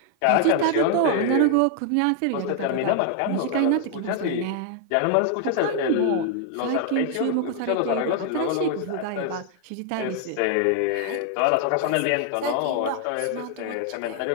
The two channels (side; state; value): both; different; correlation 0.00